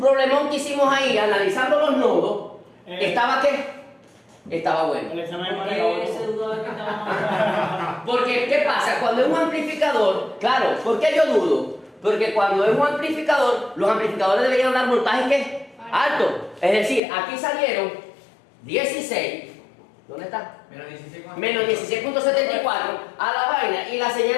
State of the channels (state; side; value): drops out; right; at 17.0 s